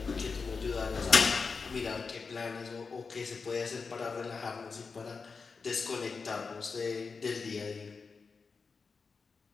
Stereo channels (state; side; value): quieter; right; 4.8 dB